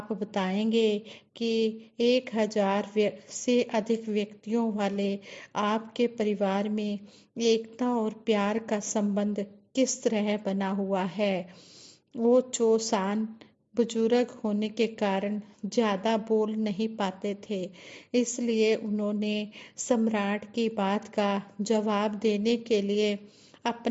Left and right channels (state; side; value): identical; both; correlation 1.00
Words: बताएंगे कि 1000 से अधिक व्यक्तियों वाले आपके परिवार में एकता और प्यार का संबंध किस तरह बना हुआ है? ओचो सान बुजुर्ग होने के कारण ज़्यादा बोल नहीं पाते थे, इसलिए उन्होंने सम्राट की बात का जवाब देने के लिए